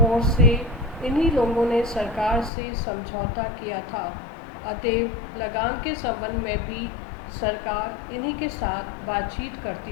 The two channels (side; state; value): right; drops out; at 2.5 s